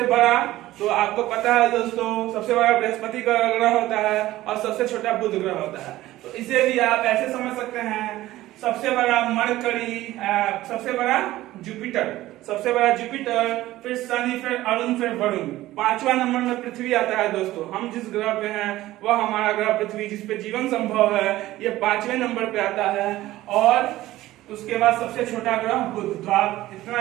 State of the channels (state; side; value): quieter; left; 16.1 dB